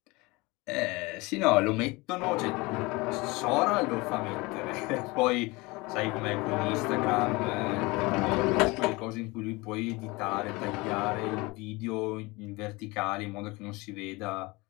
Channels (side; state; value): right; quieter; 24.0 dB